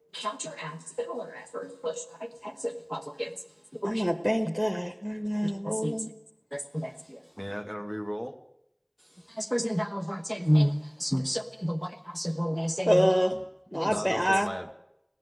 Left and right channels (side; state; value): both; identical; correlation 1.00